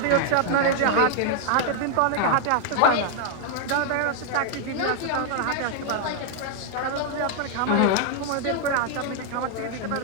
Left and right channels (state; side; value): different; both; correlation 0.00